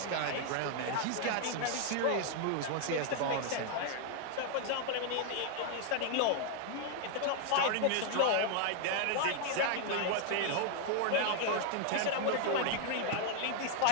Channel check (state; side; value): different; both; correlation 0.00